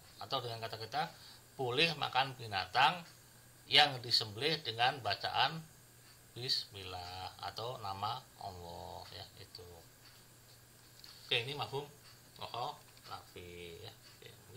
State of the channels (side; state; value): both; identical; correlation 1.00